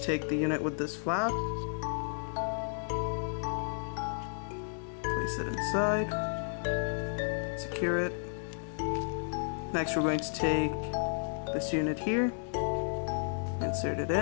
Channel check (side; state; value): right; silent; digital silence